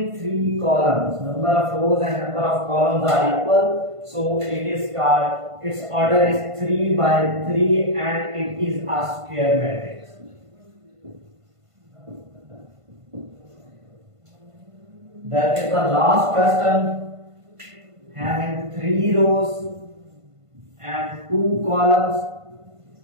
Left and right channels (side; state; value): left; late; 1.5 ms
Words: 3 columns. Number of rows and number of columns are equal, so it is called, its order is 3 by 3 and it is a square matrix. That is the last question, having 3 rows and 2 columns.